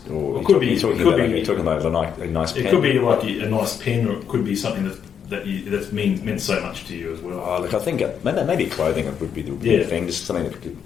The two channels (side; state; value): right; quieter; 7.8 dB